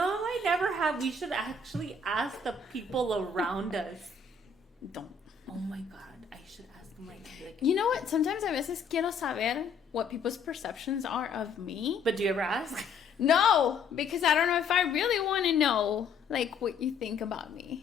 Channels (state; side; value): quieter; right; 4.6 dB